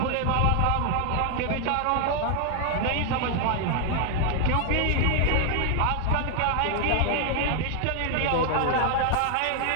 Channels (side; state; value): both; different; correlation 0.00